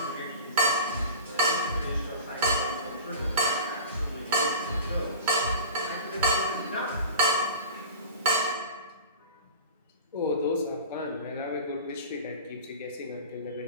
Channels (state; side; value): inverted; both; correlation -0.36